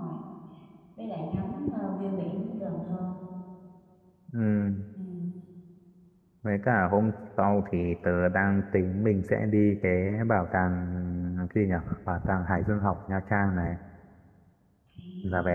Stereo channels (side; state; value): both; identical; correlation 1.00